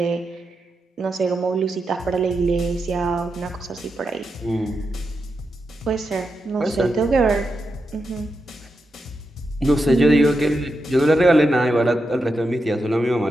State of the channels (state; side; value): normal; both; correlation 0.87